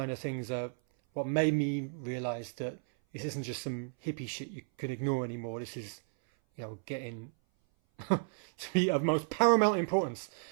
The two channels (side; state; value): left; silent; 55 dB below the other